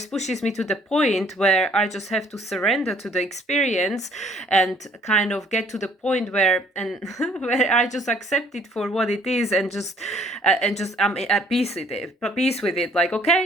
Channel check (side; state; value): both; normal; correlation 0.60